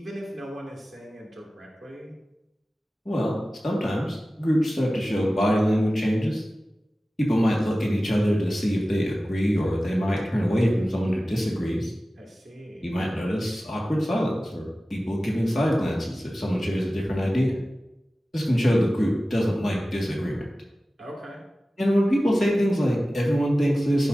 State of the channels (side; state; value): both; normal; correlation 0.96